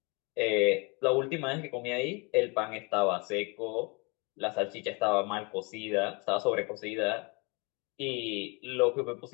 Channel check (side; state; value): right; quieter; 30.1 dB